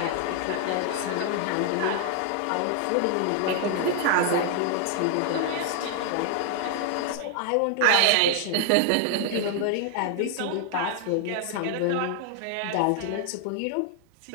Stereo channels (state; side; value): different; both; correlation 0.00